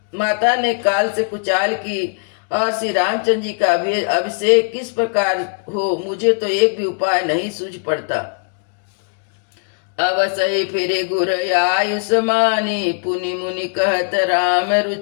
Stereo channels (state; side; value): quieter; right; 37.7 dB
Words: माता ने काल से कुचाल की और श्री रामचंद्र जी का अभिषेक किस प्रकार हो, मुझे तो एक भी उपाय नहीं सूझ पड़ता। अवसई फिर गुर आयुष्मानी, पुनि मुनि कहत राम